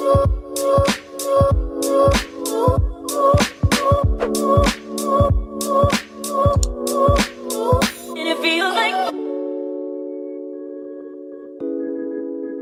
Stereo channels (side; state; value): both; identical; correlation 1.00